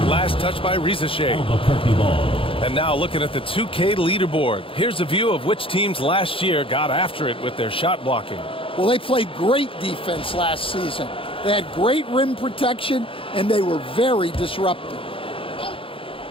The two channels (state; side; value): late; right; 0.26 ms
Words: Last touch by Rizachet. And now looking at the 2K leaderboard. Here's a view of which teams last year got after it with their shot blocking. Well, they played great defense last season. They had great rim protection, and they were very disruptive.